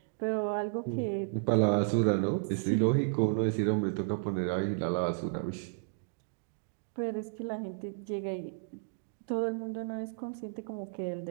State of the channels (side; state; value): left; silent; digital silence